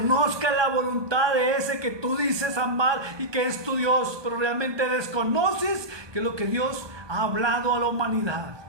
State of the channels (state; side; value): late; left; 1.2 ms